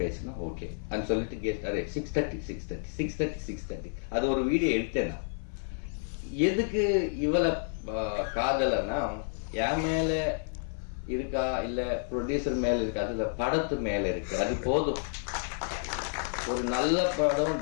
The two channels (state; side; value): silent; right; 57 dB below the other